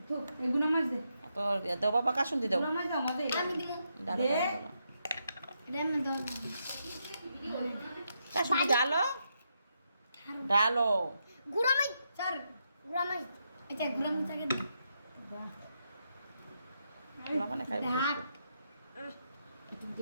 তোর দেও বাবা কাশুন দি দেও কাশুন দি ডালো ডালো গুড়ামাই স্যার গুড়ামাই আচ্ছা গুড়ামাই চাকে দে মানে খাইব একটু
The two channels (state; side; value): inverted; both; correlation -0.81